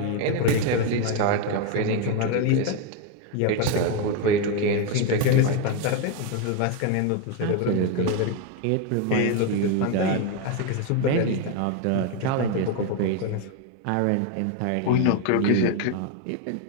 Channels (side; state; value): both; different; correlation 0.02